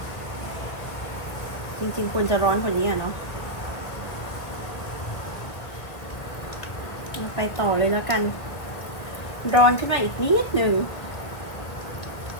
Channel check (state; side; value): late; right; 1.5 ms